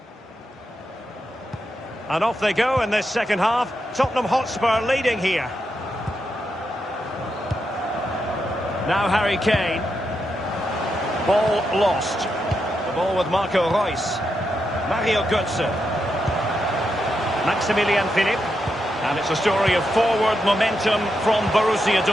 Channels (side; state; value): both; normal; correlation 0.84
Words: And off they go in this second half. Tottenham Hotspur leading here. Now Harry Kane. Ball lost. The ball with Marco Reus. Mario Götze. Maximilian Philipp. And it's a story of forward momentum from Borussia